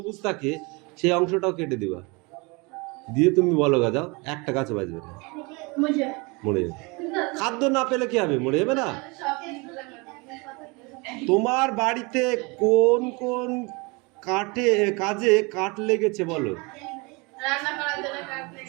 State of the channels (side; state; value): left; quieter; 27.8 dB